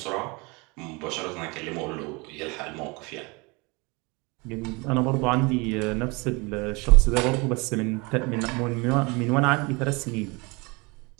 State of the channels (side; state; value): left; quieter; 27.4 dB